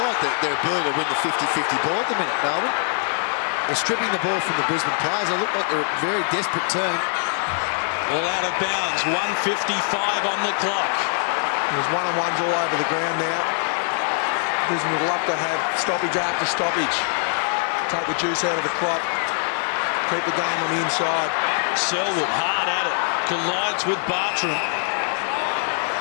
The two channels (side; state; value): right; silent; 55 dB below the other